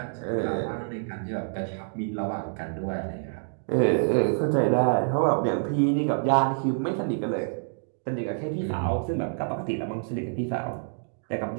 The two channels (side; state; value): left; silent; digital silence